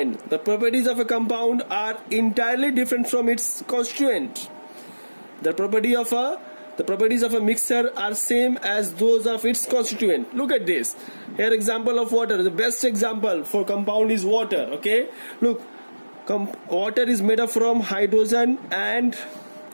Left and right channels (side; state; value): both; inverted; correlation -1.00